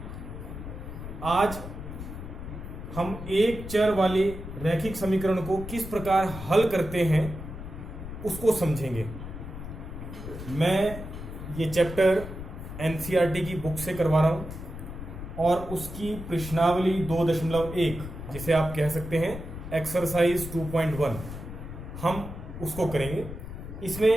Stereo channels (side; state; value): left; noise; rumble, 10 dB below the sound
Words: आज हम एक चर वाले रैखिक समीकरण को किस प्रकार हल करते हैं उसको समझेंगे। मैं ये चैप्टर एनसीईआरटी की बुक से करवा रहा हूं और उसकी प्रश्नावली 2.1 जिसे आप कह सकते हैं एक्सरसाइज 2.1 हम उसको करेंगे।